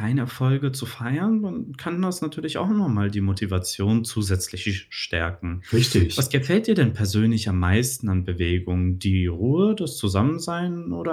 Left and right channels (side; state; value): both; identical; correlation 1.00